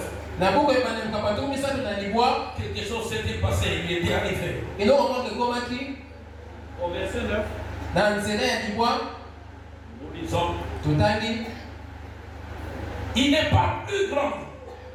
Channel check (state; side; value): identical; both; correlation 1.00